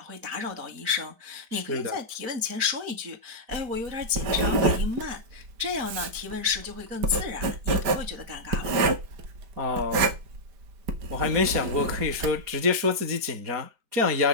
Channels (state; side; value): late; left; 5.0 ms